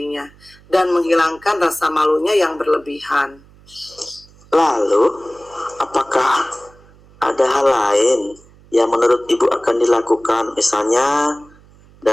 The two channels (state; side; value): noise; right; hum, 27 dB below the sound